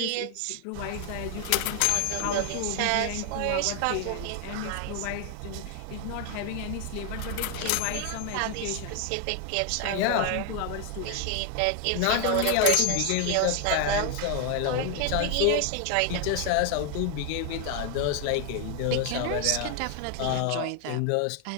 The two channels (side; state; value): both; different; correlation 0.01